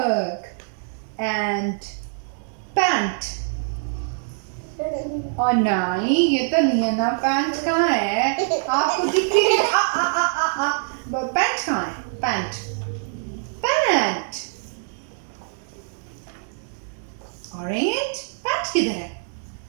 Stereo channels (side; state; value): left; silent; digital silence